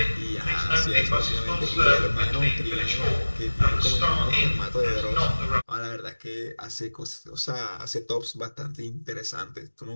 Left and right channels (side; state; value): both; inverted; correlation -1.00